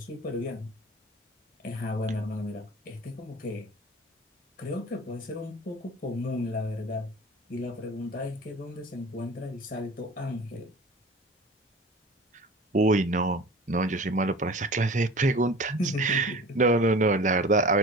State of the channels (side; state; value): both; normal; correlation 0.39